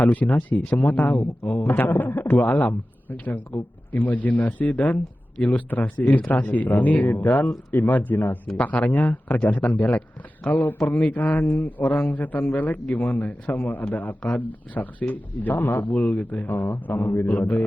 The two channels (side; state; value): both; normal; correlation 0.95